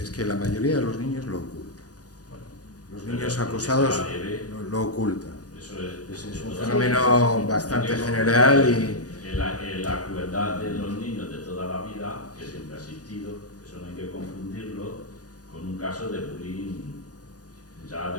que la mayoría de los niños lo ocultan. Bueno, Los pero niños porque acosados sea leve, lo ocultan. eso es Es un totalmente- fenómeno bastante general y La crueldad de los niños de toda la vida, que siempre ha existido, eso no hay que confundirlo con un caso de bullying ya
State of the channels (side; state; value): right; late; 0.68 ms